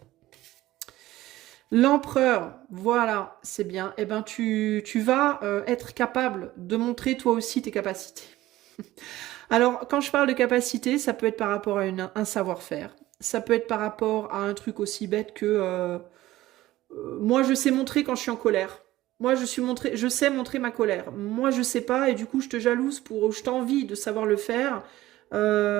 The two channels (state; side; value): quieter; left; 16.1 dB